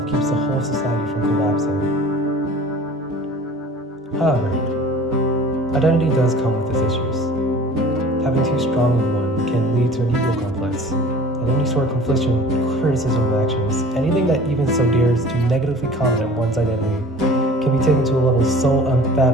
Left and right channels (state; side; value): normal; both; correlation 0.44